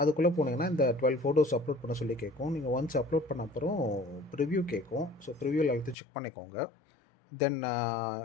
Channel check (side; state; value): right; drops out; at 6.0 s